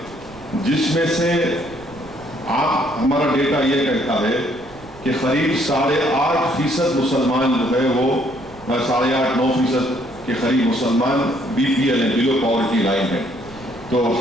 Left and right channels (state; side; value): noise; right; rumble, 21 dB below the sound